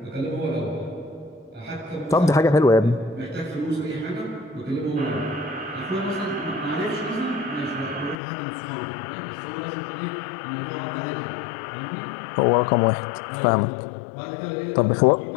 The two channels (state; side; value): drops out; right; at 8.2 s